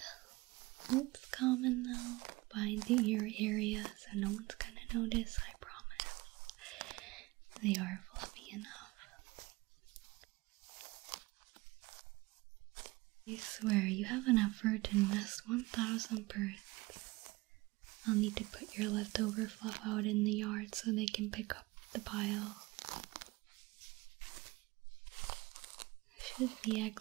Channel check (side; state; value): left; quieter; 22.3 dB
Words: It's common though, behind the ear area, so no one's gonna notice, I promise. They are fluffy enough. I swear, you have enough fur to nest 1,000 birds. I'll need to put your leftover fluff out in the yard so they can pick up the pile. Should be egg